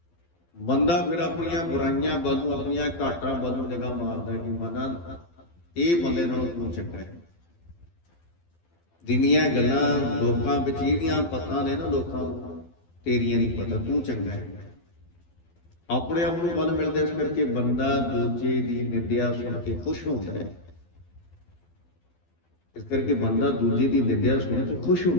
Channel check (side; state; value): right; late; 12 ms